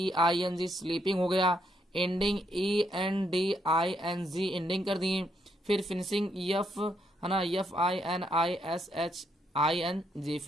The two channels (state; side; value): normal; both; correlation 0.75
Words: स्लीपिंग हो गया। एंडिंग, ENDING, एंडिंग कर दिए। फिर फिनिशिंग, है ना, FINISHING,